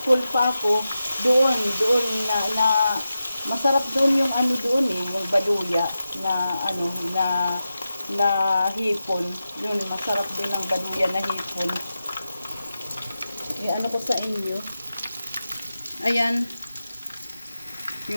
pa ako, doon na masarap doon yung doon yung baduya na hipon. Yun, masarap din ang baduya na hipon. Ko sa inyo. Ayan.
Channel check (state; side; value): inverted; both; correlation -0.92